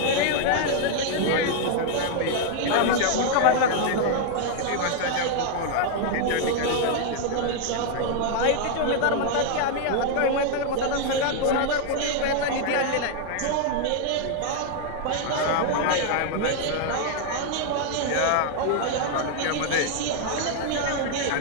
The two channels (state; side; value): different; both; correlation 0.00